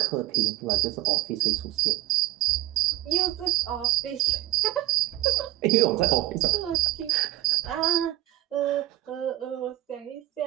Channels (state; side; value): quieter; left; 15.0 dB